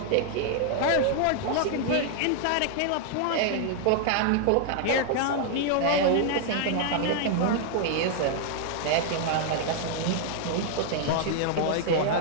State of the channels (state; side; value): different; both; correlation -0.01